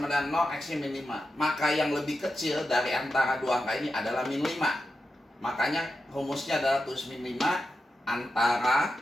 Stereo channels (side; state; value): both; normal; correlation 0.89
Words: dengan 0, X-nya min 5. Maka yang lebih kecil dari antara dua angka ini adalah min 5. Makanya rumusnya adalah tulis min 5 antara